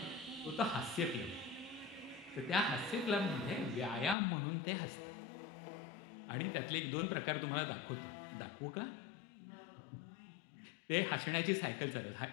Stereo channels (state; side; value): drops out; right; at 4.2 s